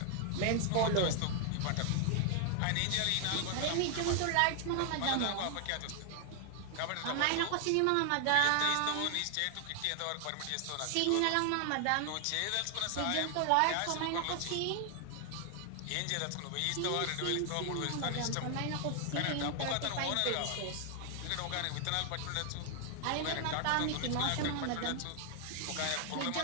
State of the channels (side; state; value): both; different; correlation 0.00